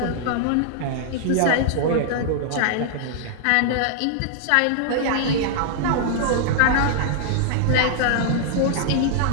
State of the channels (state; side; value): different; both; correlation -0.01